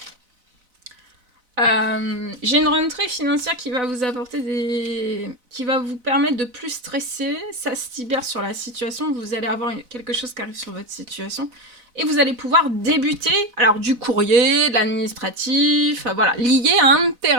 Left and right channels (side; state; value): left; late; 4.0 ms